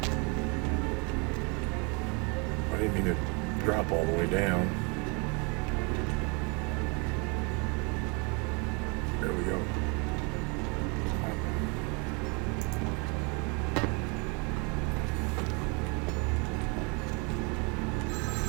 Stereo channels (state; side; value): quieter; left; 32.1 dB